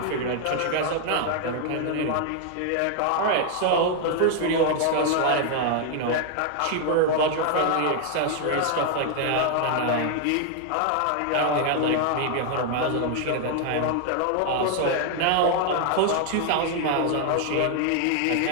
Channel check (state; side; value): different; both; correlation 0.00